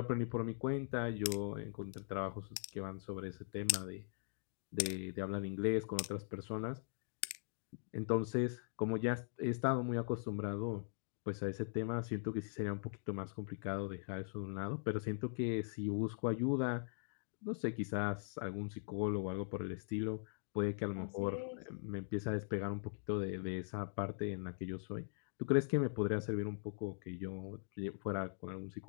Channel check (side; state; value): right; silent; digital silence